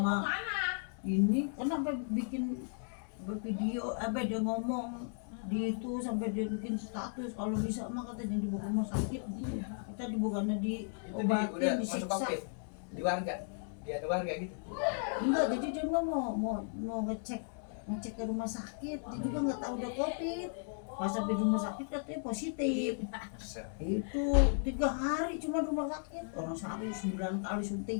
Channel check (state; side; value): silent; right; digital silence